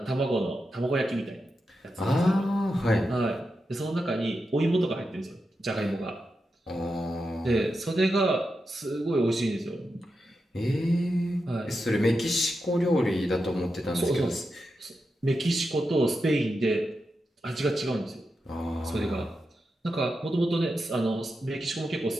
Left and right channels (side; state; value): both; normal; correlation 0.88